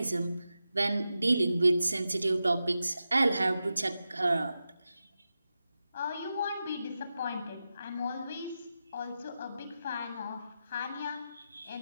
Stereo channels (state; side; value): inverted; both; correlation -0.91